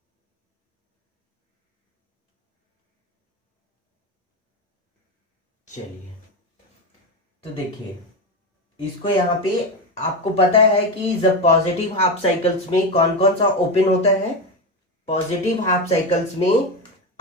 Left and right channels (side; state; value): both; normal; correlation 0.15